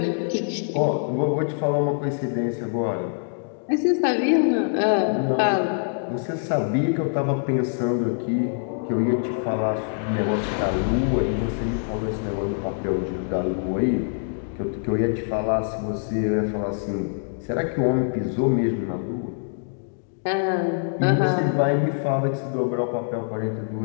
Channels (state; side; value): silent; right; digital silence